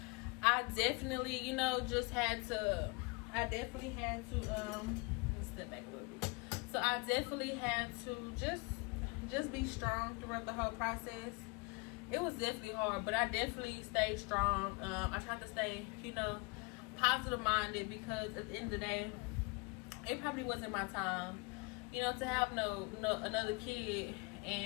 I definitely, you know, just had to. Let me step back a little bit. So I definitely had to just be strong throughout the whole process. It was definitely hard, but I definitely stayed strong. I tried to stay, you know, positive minded, because at the end of the day, it probably wasn't my time, you know, to have no another kid,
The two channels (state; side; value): quieter; right; 28.6 dB